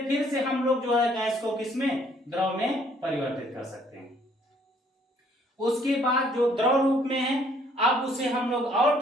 फिर से हम लोग जो है गैस को किसमें, द्रव में परिवर्तित कर सकते हैं। उसके बाद जो द्रव रूप में है, अब उसे हम लोग और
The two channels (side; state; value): both; normal; correlation 0.63